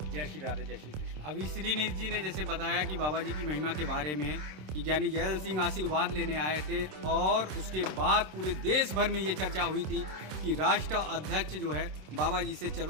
जय श्री राधे, जय श्री कृष्ण। अभी श्रीनिधि जी ने जैसे बताया कि बाबा जी की महिमा के बारे में कि ज्ञानी जैल सिंह आशीर्वाद लेने आए थे और उसके बाद पूरे देश भर में ये चर्चा हुई थी कि राष्ट्र अध्यक्ष जो है बाबा जी से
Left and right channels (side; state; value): left; late; 26 ms